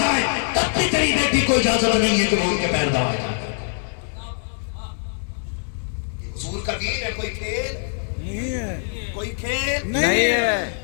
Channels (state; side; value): silent; right; digital silence